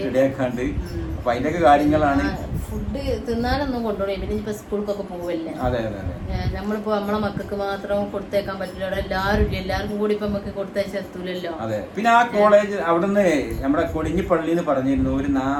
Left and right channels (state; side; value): identical; both; correlation 1.00